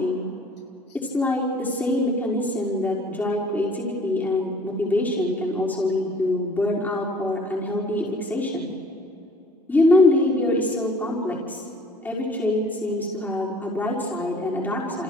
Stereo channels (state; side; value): normal; both; correlation 0.52